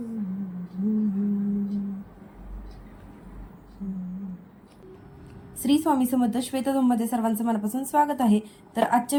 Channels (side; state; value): both; identical; correlation 1.00